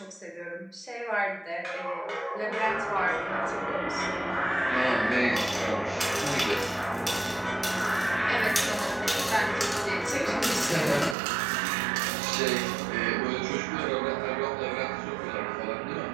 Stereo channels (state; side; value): drops out; left; at 11.2 s